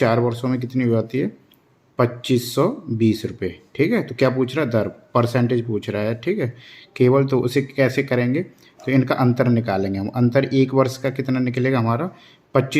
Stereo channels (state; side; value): identical; both; correlation 1.00